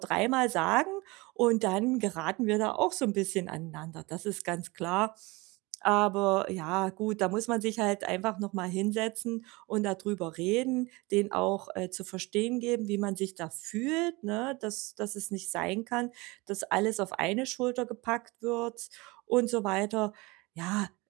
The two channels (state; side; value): quieter; left; 24.2 dB